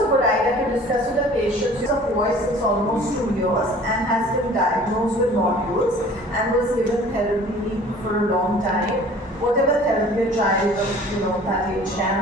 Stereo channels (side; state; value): both; normal; correlation 0.48